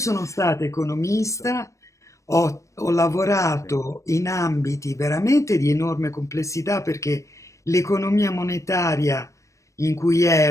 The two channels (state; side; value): late; right; 0.15 ms